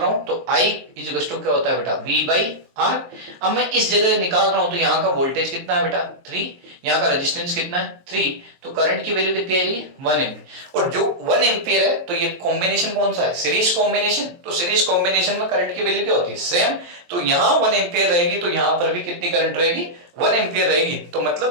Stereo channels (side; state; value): left; late; 23 ms